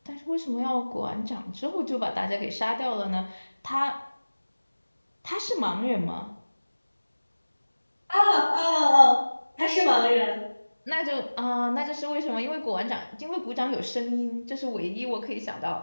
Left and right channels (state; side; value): inverted; both; correlation -1.00